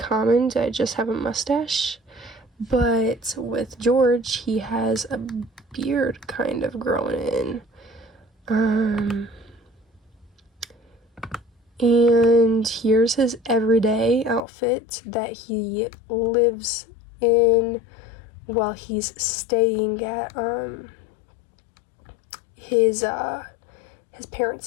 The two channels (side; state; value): right; drops out; at 14.4 s